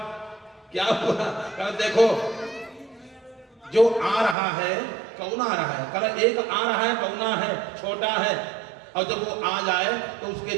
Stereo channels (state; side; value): drops out; left; at 4.4 s